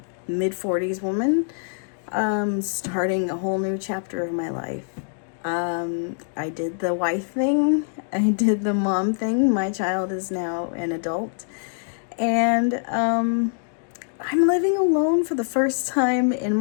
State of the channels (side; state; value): right; silent; digital silence